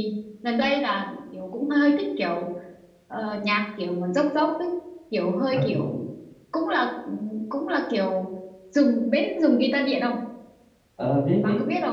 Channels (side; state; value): both; identical; correlation 1.00